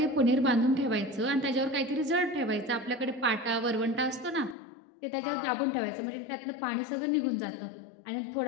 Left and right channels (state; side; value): drops out; right; at 4.5 s